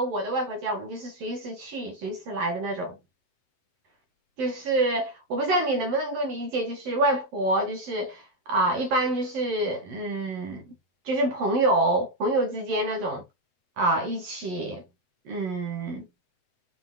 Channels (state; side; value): late; left; 7.9 ms